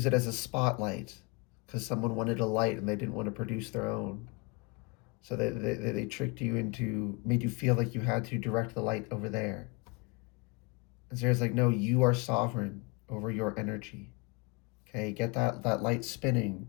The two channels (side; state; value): right; quieter; 29.0 dB